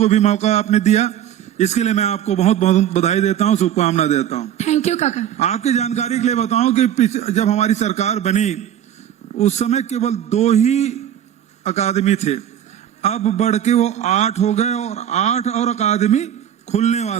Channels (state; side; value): quieter; left; 10.3 dB